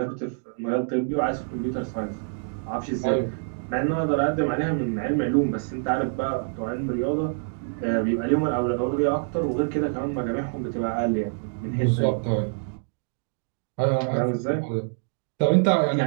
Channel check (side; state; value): left; silent; digital silence